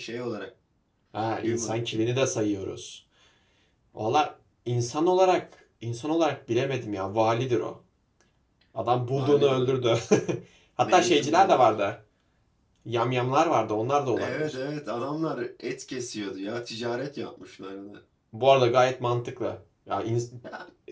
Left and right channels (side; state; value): both; identical; correlation 1.00